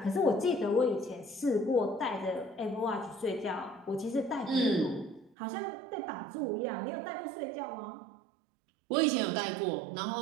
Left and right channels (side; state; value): left; drops out; at 5.4 s